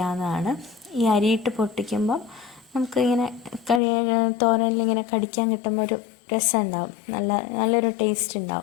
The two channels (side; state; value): right; drops out; at 3.8 s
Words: ഈ അരിയിട്ട് പൊട്ടിക്കുമ്പം നമുക്ക് ഇങ്ങനെ തോരനിലിങ്ങനെ കടിക്കാൻ കിട്ടുമ്പോൾ ഒരു രസം ഉണ്ടാവും, നല്ലൊരു ടേസ്റ്റ്